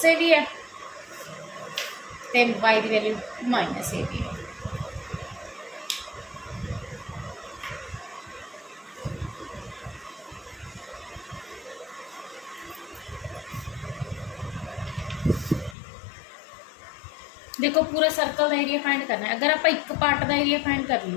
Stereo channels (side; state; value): right; drops out; at 15.8 s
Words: ए भी है तो वाई की वैल्यू माइनस ए भी है। देखो पूरा सर्कल का एरिया फाइंड करना है। अगर आप एक पार्ट का एरिया फाइंड कर